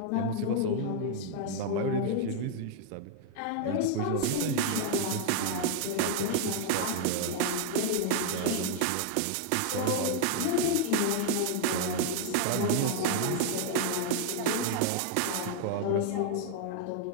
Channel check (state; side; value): different; both; correlation 0.00